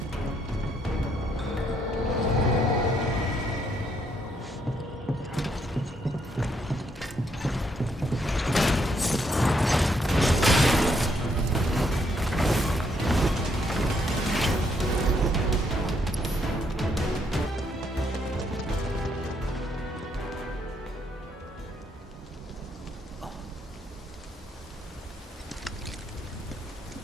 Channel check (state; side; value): normal; both; correlation 0.74